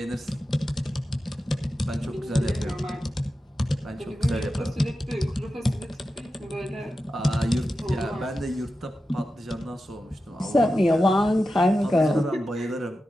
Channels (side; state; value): both; normal; correlation 0.92